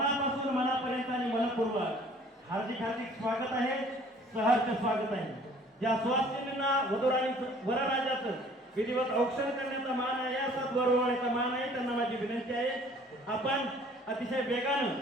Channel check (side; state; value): both; normal; correlation 0.54